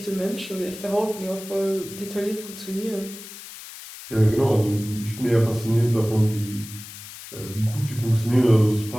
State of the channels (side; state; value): left; noise; hiss, 14 dB below the sound